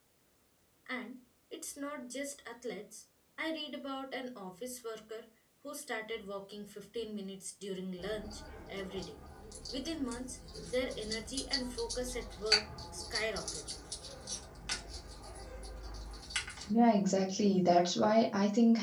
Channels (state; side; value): identical; both; correlation 1.00